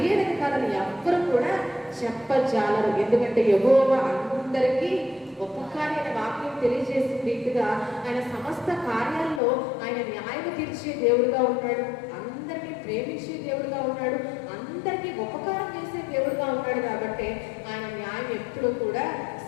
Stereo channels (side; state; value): right; drops out; at 9.4 s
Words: అయినది కాదని ఎవ్వరు కూడా చెప్పజాలరు. ఎందుకంటే యెహోవా అందరికీ ఉపకారి అనే వాక్యం తెలియజేసిన రీతిగా ఆయన సమస్త కార్యాల్లో ఆయన న్యాయం తీర్చే దేవుడుగా ఉన్నాడు. అందరినీ ప్రేమించే దేవుడుగా ఉన్నాడు. అందరికీ ఉపకారం చేసే దేవుడుగా ఉన్నాడు. కాబట్టి ఆయన న్యాయం ఎప్పుడు కూడా